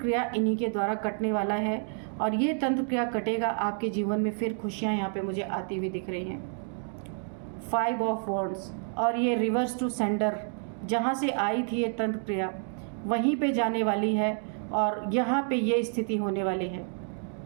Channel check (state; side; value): silent; left; 58 dB below the other